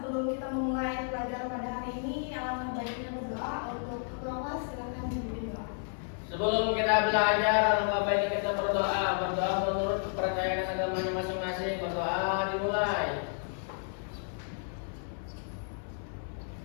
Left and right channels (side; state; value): right; silent; 57 dB below the other